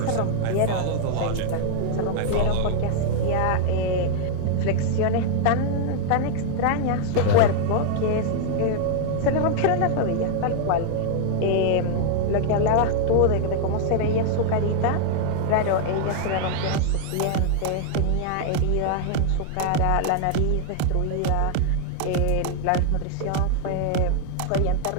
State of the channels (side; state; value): both; different; correlation 0.00